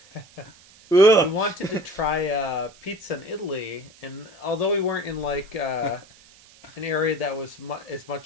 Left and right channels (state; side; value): noise; right; hiss, 25 dB below the sound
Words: We Ugh. wanted to try pizza in Italy, and although we weren't in like an area that was as